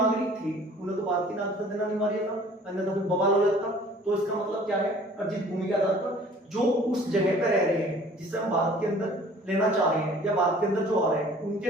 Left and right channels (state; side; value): normal; both; correlation 0.51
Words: थे उन्हें तो भारत की नागरिकता देना अनिवार्य था, अन्यथा फिर बवाल हो जाता। तो इसका मतलब क्या है, अर्जित भूमि के आधार पर जो उस जगह पर रह रहे हैं जिसे हम भारत के अंदर लेना चाह रहे हैं या भारत के अंदर जो आ रहे हैं